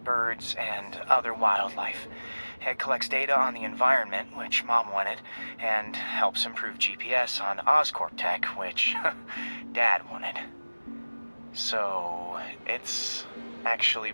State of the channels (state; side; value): inverted; both; correlation -1.00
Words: birds and other wildlife. It collects data on the environment, which Mom wanted, and helps improve GPS on Oscorp tech, which Dad wanted. So, it's actually